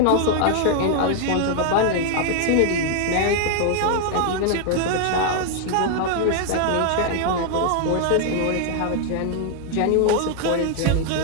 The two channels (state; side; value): different; both; correlation 0.00